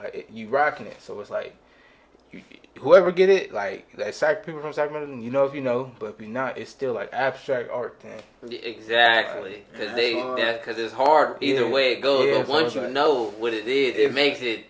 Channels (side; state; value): both; identical; correlation 1.00